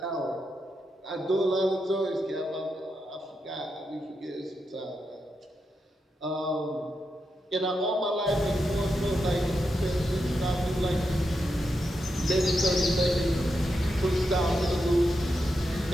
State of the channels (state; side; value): normal; both; correlation 0.86